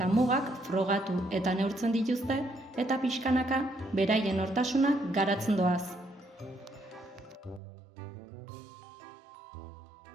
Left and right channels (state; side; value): drops out; left; at 7.6 s